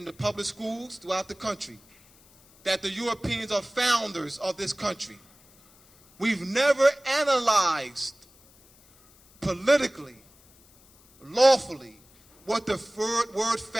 the public schools throughout the country, that the Europeans are founders of this country. We've never analyzed politically, lawfully, what the word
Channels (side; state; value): left; noise; hiss, 28 dB below the sound